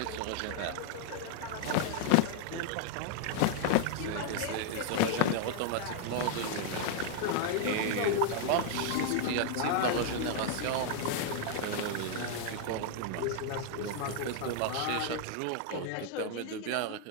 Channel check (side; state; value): both; different; correlation 0.00